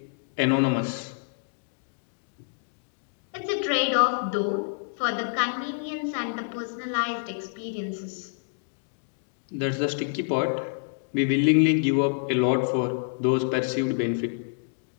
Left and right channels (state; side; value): silent; right; digital silence